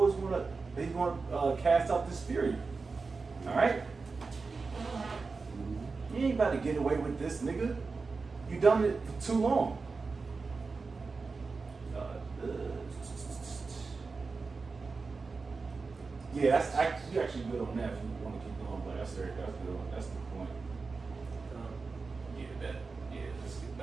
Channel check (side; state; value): left; quieter; 4.3 dB